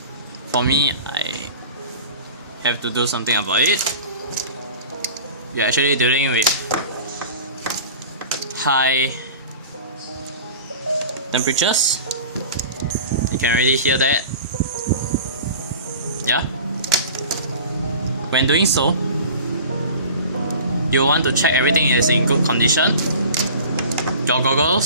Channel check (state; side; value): inverted; both; correlation -0.39